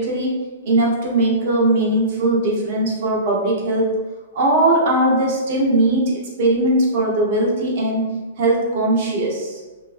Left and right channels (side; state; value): both; inverted; correlation -0.31